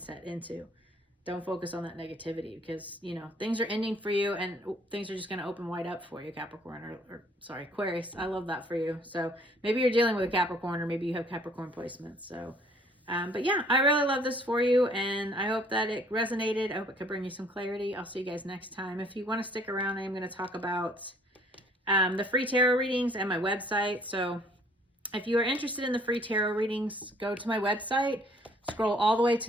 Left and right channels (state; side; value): normal; both; correlation 0.60